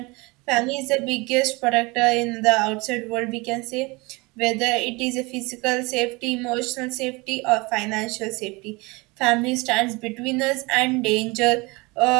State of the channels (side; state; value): left; quieter; 25.2 dB